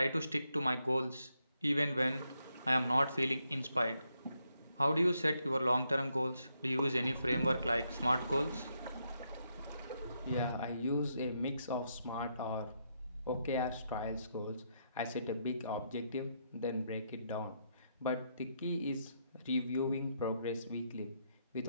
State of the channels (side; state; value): both; inverted; correlation -0.79